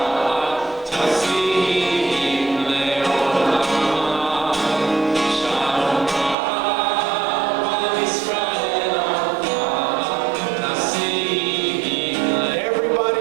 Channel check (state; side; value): drops out; left; at 6.4 s